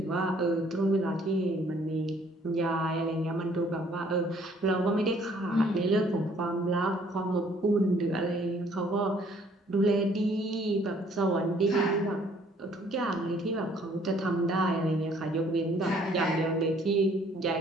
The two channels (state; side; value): normal; both; correlation 0.61